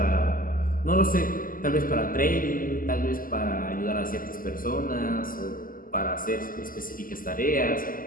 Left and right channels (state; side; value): late; right; 0.41 ms